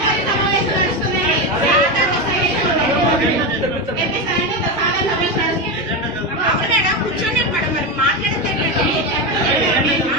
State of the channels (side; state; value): both; normal; correlation 0.14